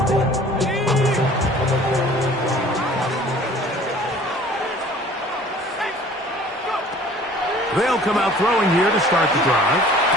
They'll come out throwing here to start the drive.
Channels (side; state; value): both; normal; correlation 0.50